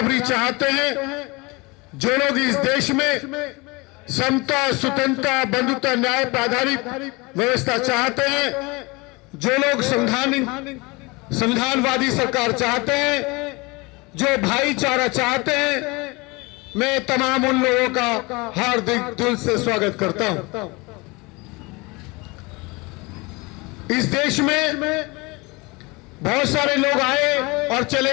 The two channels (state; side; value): quieter; right; 25.5 dB